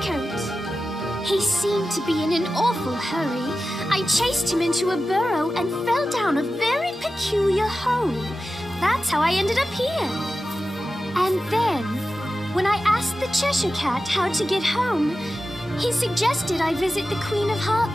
He seemed to be in an awful hurry. I chased him into a burrow and fell down a very peculiar hole. That's how I ended up here. And then, when I asked the Cheshire Cat how to get home, he suggested I visit the Queen of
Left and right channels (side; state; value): both; normal; correlation 0.93